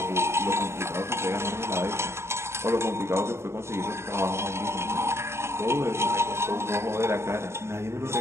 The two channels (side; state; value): left; late; 0.13 ms